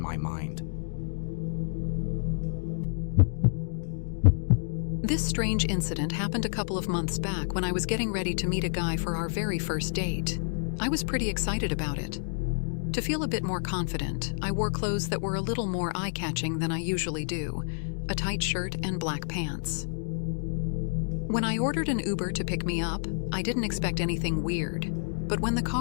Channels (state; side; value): silent; right; digital silence